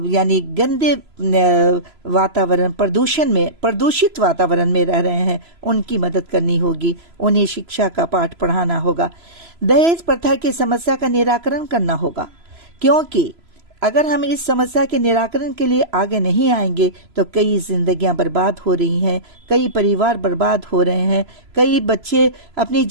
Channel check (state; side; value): late; left; 3.0 ms